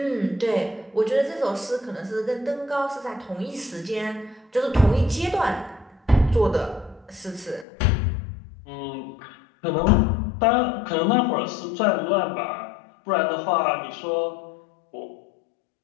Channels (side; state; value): right; drops out; at 7.7 s